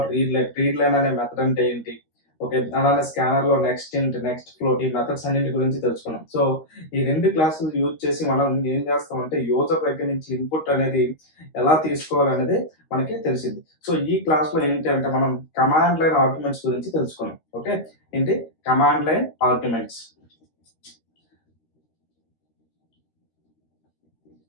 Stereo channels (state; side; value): late; right; 13 ms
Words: రీడ్ లైన్ అనే మెథడ్ అంటే ఏంటి, ఓకే, అలానే స్కానర్లో నెక్స్ట్ ఇంట్, నెక్స్ట్ ఫ్లోట్, ఈ మెథడ్స్ అన్నింటి గురించి తెలుసుకున్నాం. సో ఈ రెండు క్లాసులు యూజ్ చేసి మనం ఏం చేస్తామంటే యూజర్ దగ్గర నుంచి ఇన్పుట్ అనేది ఎలా తీసుకోవాలి అనేది మనకి తెలిసింది. సో ఈ క్లాస్లో ఏంటి అంటే మనం కమాండ్ లైన్ ఆర్గ్యుమెంట్స్ గురించి తెలుసుకున్నాం. ఓకే, ఏంటి command line arguments.